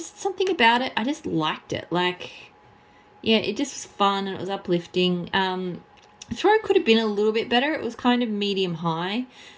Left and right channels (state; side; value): identical; both; correlation 1.00